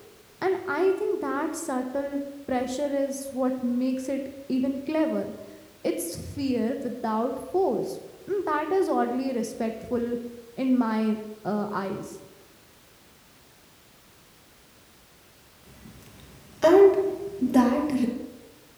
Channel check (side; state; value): both; identical; correlation 1.00